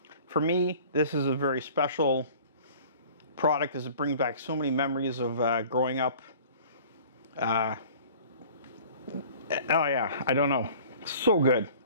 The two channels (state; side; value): inverted; both; correlation -0.47